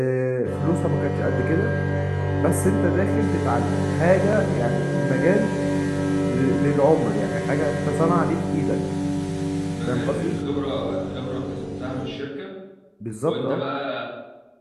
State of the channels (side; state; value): both; identical; correlation 1.00